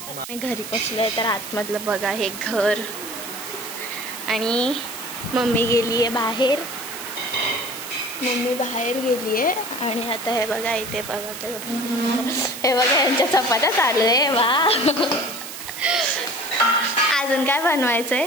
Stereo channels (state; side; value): noise; right; hiss, 10 dB below the sound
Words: मी घरी पोचले. तर आतमधलं बघा हे घर, आणि मम्मी गेली आहे बाहेर. आणि आता हे बघा इथे बघा, हे बघा यांच्या चपात्या चालू आहे. वा. अजून काय बनवायचंय?